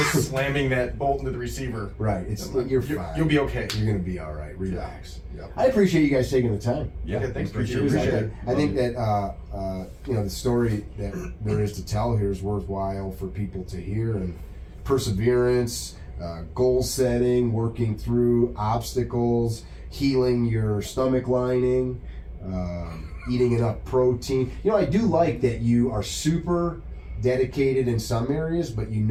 slamming that bolt into the receiver. Right, you're fine. You'll be okay. You're gonna be all right. Relax. Yep. I appreciate you guys taking the time. Yeah, Okay, thanks. appreciate Appreciate it. it. I think that the story that there is to tell here is worthwhile for people to hear, and perseverance, goal setting, working through obstacles, healing your stomach lining, eating enough protein. You know, I do like that you are super dedicated in some areas, but you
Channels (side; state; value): both; identical; correlation 1.00